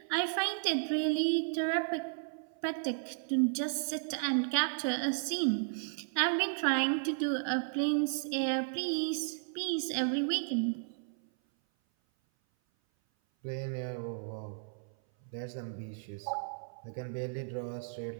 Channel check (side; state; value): left; silent; 55 dB below the other